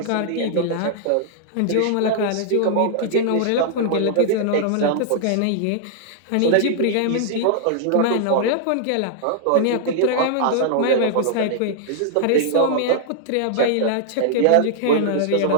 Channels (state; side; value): different; both; correlation -0.01